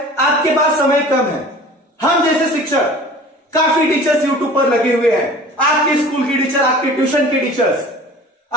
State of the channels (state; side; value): normal; both; correlation 0.43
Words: आपके पास समय कम है। हम जैसे शिक्षक, काफी टीचर्स यूट्यूब पर लगे हुए हैं, आपके स्कूल के टीचर, आपके ट्यूशन के टीचर्स,